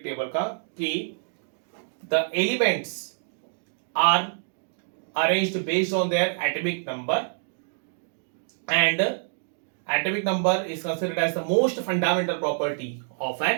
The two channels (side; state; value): left; silent; digital silence